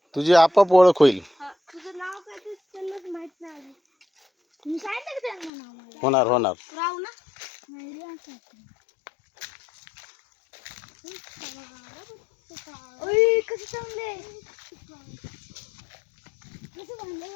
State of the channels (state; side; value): drops out; right; at 5.5 s